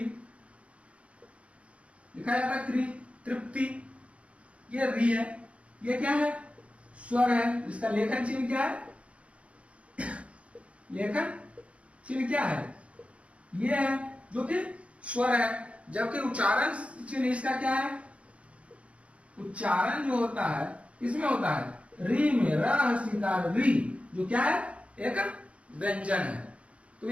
लिखा जाता है, त्रि, तृप्ति, ये री है। ये क्या है, स्वर है। इसका लेखन चिन्ह क्या है, लेखन चिन्ह क्या है, ये है जो कि स्वर है। जबकि उच्चारण चिन्ह इसका क्या है, उच्चारण जो होता है इसमें होता है री में, र री, जो क्या है, एक व्यंजन है। तो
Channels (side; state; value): left; late; 0.062 ms